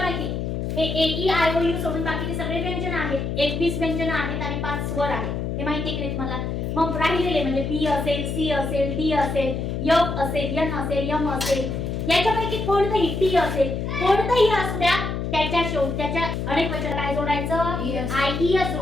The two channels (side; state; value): left; noise; hum, 3 dB below the sound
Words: हे ए ई आय ओ यू सोडून बाकीचे सगळे व्यंजन आहेत. 21 व्यंजन आहेत आणि 5 स्वर आहेत. हे माहिती आहे की तुम्हाला? मग राहिलेले म्हणजे बी असेल, सी असेल, डी असेल, एफ असेल, एन असेल, एम असेल, याच्यापैकी कोणतंही टी असेल, कोणतंही असू द्या त्याच्या त्याच्या अनेक वचन काय जोडायचं? आय ई एस